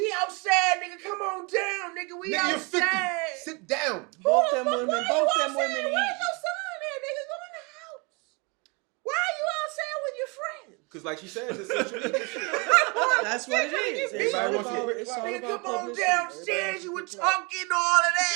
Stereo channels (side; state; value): left; quieter; 30.2 dB